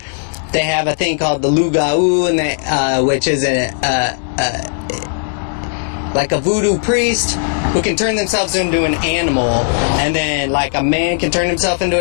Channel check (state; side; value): silent; right; digital silence